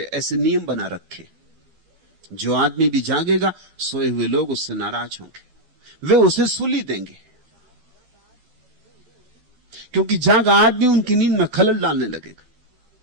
ऐसे नियम बना रखे। जो आदमी भी जागेगा, सोए हुए लोग उससे नाराज होंगे, वे उसे सुली देंगे, क्योंकि जागा आदमी उनकी नींद में खलल डालने लगेगा।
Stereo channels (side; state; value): left; late; 12 ms